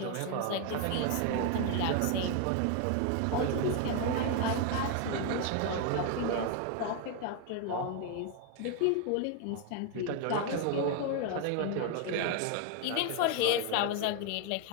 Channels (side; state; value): both; different; correlation 0.01